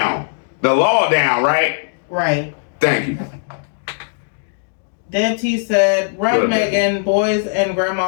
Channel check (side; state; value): right; silent; digital silence